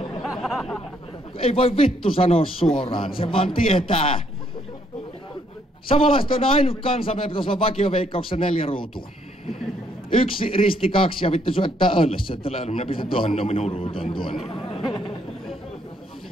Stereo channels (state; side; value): normal; both; correlation 0.70